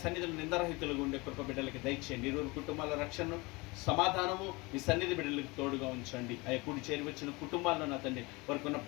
సన్నిధిలో నిందరహితులుగా ఉండే కృప బిడ్డలకి దయచేయండి. ఇరువురు కుటుంబాల రక్షణను, సమాధానము మీ సన్నిధి బిడ్డలకు తోడుగా ఉంచండి. అయ్యా కూడి చేరి వచ్చిన కుటుంబాల్లో నా తండ్రి వారికి ఉన్న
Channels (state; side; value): quieter; right; 24.9 dB